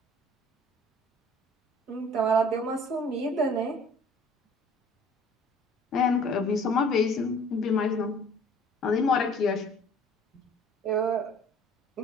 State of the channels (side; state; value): both; normal; correlation 0.52